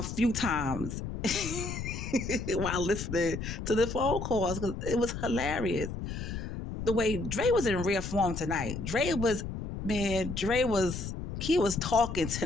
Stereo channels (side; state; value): left; noise; rumble, 6 dB below the sound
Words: few times while listening to the phone calls because it was hilarious. The way Dre was in rare form tonight. He was talking